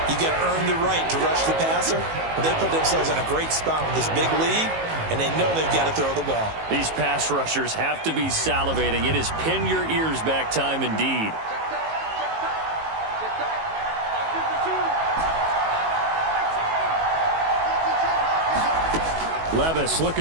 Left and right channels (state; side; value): late; left; 19 ms